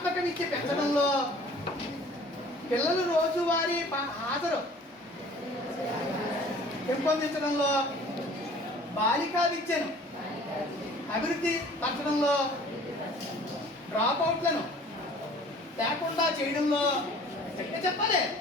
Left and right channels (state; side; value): normal; both; correlation 0.49